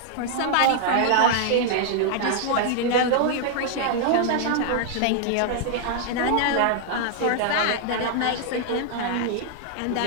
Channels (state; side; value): different; both; correlation 0.00